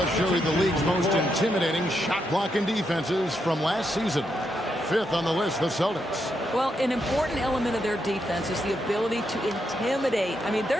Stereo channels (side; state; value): both; normal; correlation 0.81